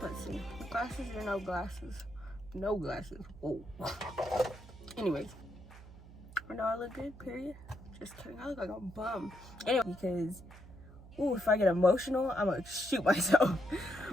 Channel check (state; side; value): noise; right; hum, 18 dB below the sound